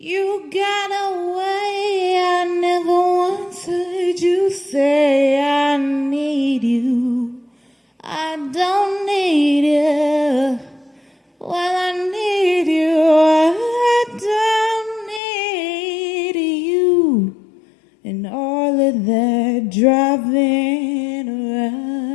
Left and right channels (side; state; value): right; drops out; at 15.2 s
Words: got away, I never once heard you say I need you. I don't need you. Well, I need you. I don't need you. And all of that driving